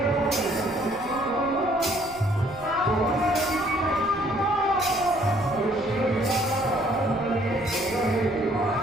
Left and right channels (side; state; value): left; noise; rumble, 19 dB below the sound